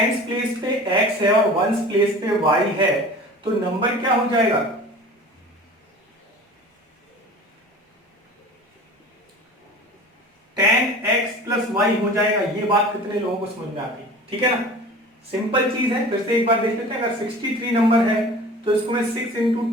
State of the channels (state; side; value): normal; both; correlation 0.40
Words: प्लेस पे x है और वंस प्लेस पे y है, तो नंबर क्या हो जाएगा, 10x प्लस y हो जाएगा। ये बात कितने लोगों को समझ में आती है, ठीक है ना। सिंपल चीज है, फिर से एक बार देख लेते हैं। अगर 63 नंबर है तो इसको मैं 6 इंटू